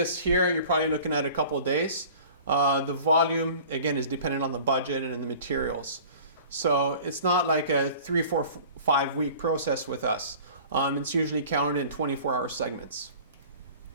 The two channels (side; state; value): both; inverted; correlation -0.45